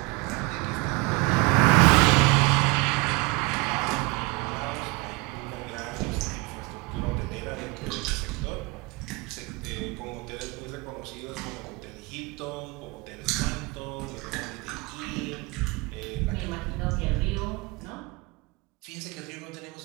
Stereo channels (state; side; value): quieter; left; 25.6 dB